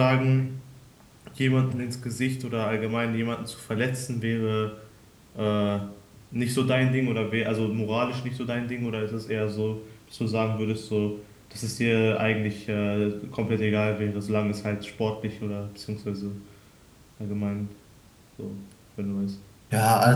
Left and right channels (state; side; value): identical; both; correlation 1.00